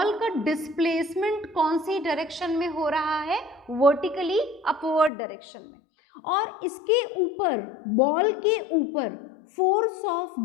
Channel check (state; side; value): drops out; right; at 5.1 s